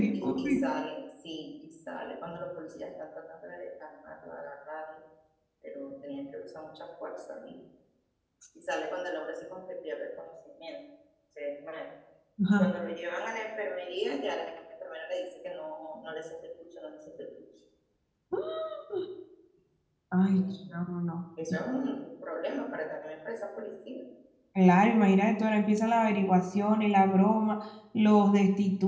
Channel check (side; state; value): both; identical; correlation 1.00